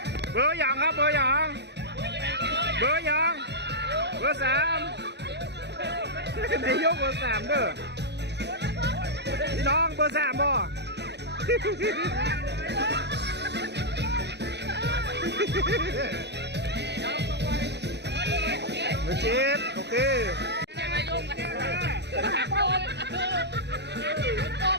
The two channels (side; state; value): left; late; 0.50 ms